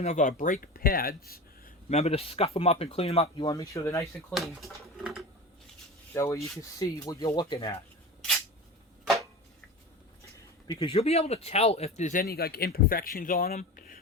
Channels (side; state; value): both; normal; correlation 0.30